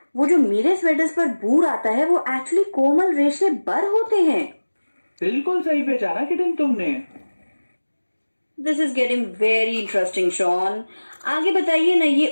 वो जो मेरे स्वेटर्स पर बूर आता है वो एक्चुअली कोमल रेशे बर होते हैं। बिल्कुल सही पहचाना किटन तुमने। This is getting very interesting Shaun. आगे बताइए ना,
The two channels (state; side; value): inverted; both; correlation -1.00